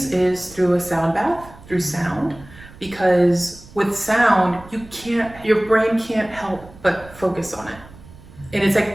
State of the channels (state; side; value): noise; right; rumble, 20 dB below the sound